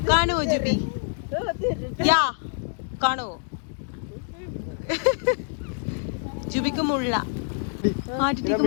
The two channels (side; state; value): right; silent; digital silence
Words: കാണുവോ ജുബി? യാ കാണുവോ? ജുബിക്ക് മുള്ള ആദ്യത്തേക്ക്